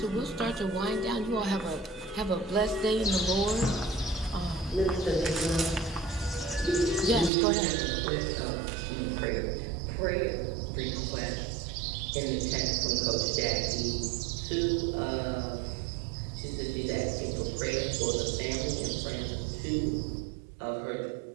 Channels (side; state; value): left; drops out; at 7.3 s